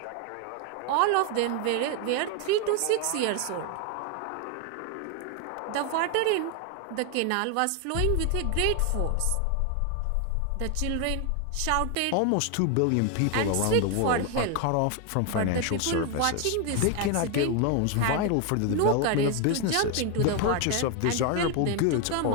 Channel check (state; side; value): different; both; correlation 0.01